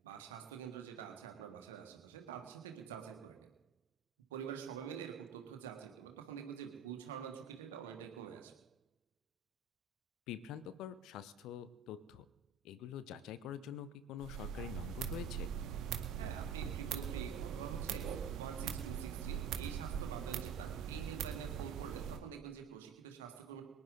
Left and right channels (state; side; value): quieter; left; 5.3 dB